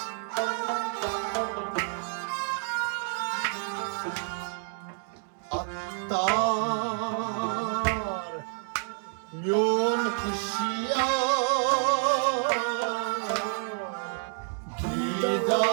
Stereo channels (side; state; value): left; silent; 59 dB below the other